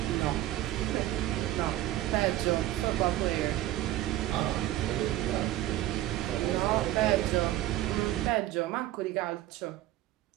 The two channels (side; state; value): left; quieter; 14.9 dB